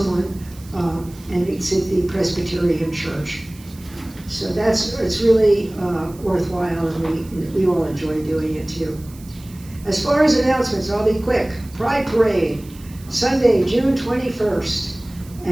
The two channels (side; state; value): right; noise; hiss, 23 dB below the sound